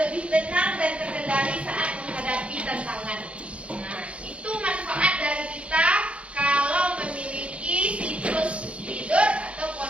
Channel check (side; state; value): left; late; 0.061 ms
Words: tenang dan terkendali saat menghadapi tantangan. Nah, itu manfaat dari kita kalau memiliki siklus tidur atau